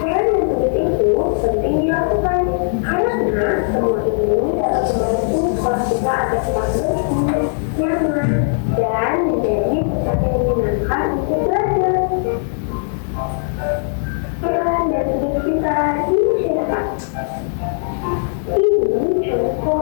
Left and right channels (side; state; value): right; silent; digital silence